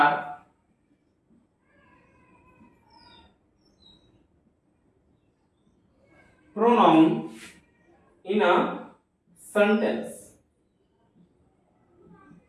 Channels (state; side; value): identical; both; correlation 1.00